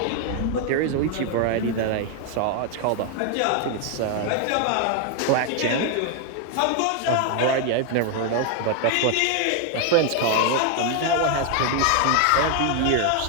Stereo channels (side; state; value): both; different; correlation 0.00